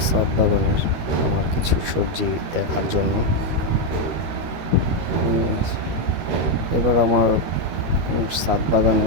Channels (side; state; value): left; late; 12 ms